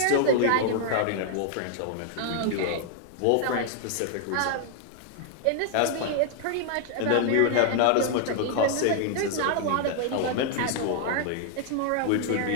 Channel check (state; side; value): different; both; correlation 0.00